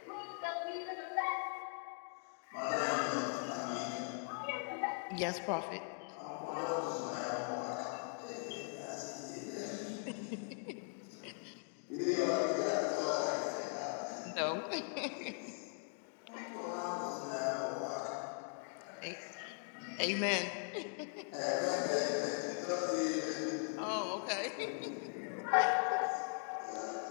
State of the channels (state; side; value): silent; right; 51 dB below the other